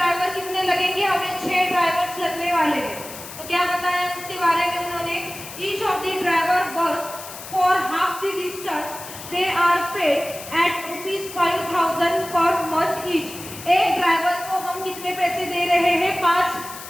कितने लगेंगे? हमें 6 ड्राइवर्स लगने वाले हैं। तो क्या बताया इसके बारे में उन्होंने? Each of the driver bus for half the distance they are paid at ₹5,000 per month each. एक ड्राइवर को हम कितने पैसे दे रहे हैं?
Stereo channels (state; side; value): noise; left; hiss, 13 dB below the sound